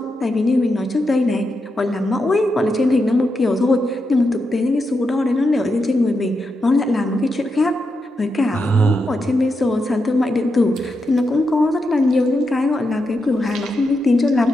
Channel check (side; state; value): both; normal; correlation 0.85